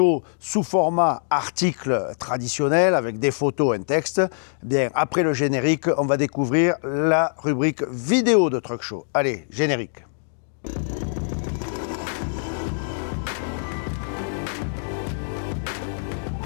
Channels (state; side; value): silent; right; digital silence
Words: sous format article traditionnel avec des photos, un texte. Bien, après le générique, on va découvrir la rubrique vidéo de Truck Show. Allez, générique.